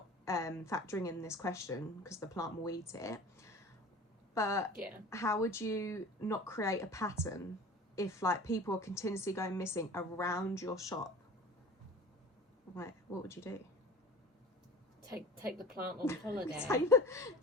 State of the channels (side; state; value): both; normal; correlation 0.39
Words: factoring in this question, because the plant will eat it. But how would you not create a pattern if people are continuously going missing around your shop? What would you do? Take the plant on holiday.